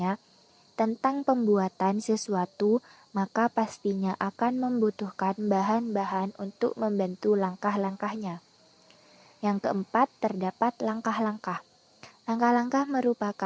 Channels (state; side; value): identical; both; correlation 1.00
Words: tentang pembuatan sesuatu, maka pastinya akan membutuhkan bahan-bahan untuk membantu langkah-langkahnya. Yang keempat, terdapat langkah-langkah. Langkah-langkah